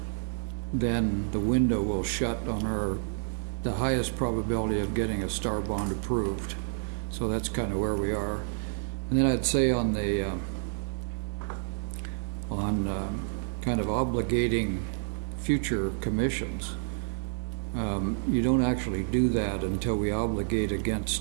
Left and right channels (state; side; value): silent; left; digital silence